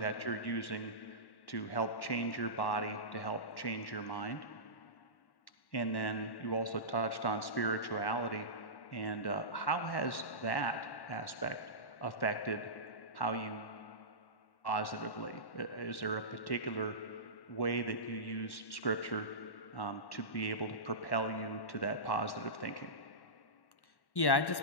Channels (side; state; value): right; late; 1.1 ms